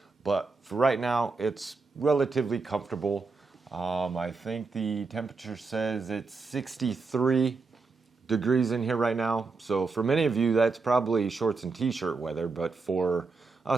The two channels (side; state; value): left; quieter; 4.2 dB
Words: But for right now, it's relatively comfortable. I think the temperature says it's 63 degrees in here right now. So for many of you, that's probably shorts and t-shirt weather. But for